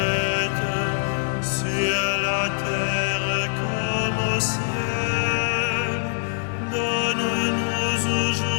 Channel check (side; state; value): right; silent; digital silence